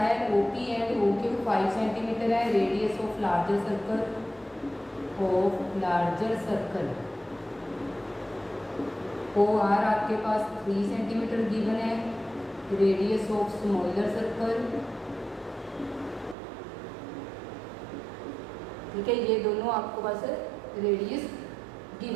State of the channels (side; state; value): left; drops out; at 16.4 s